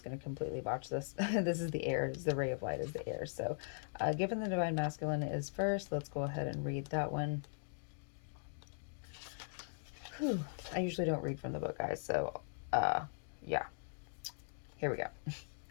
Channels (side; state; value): right; silent; digital silence